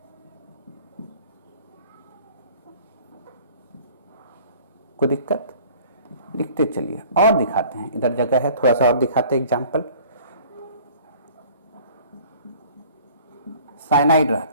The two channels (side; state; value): both; inverted; correlation -0.51